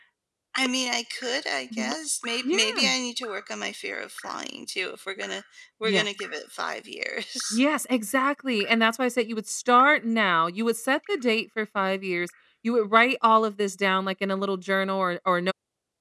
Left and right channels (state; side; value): identical; both; correlation 1.00